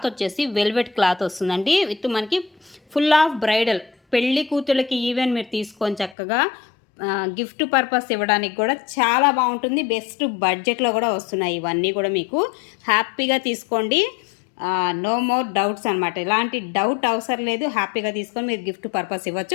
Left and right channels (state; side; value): drops out; right; at 6.2 s